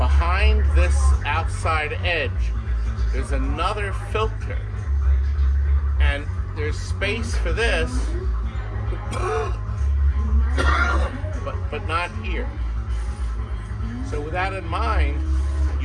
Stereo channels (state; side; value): identical; both; correlation 1.00